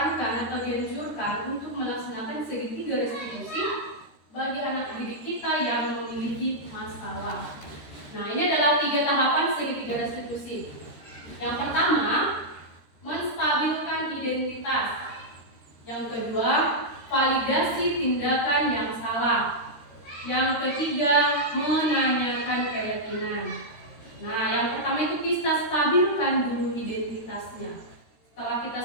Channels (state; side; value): late; right; 13 ms